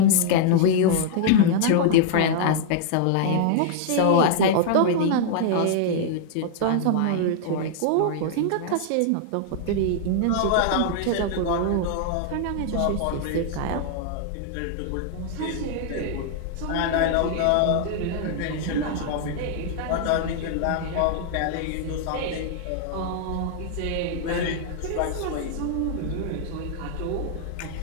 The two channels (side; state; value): both; different; correlation -0.01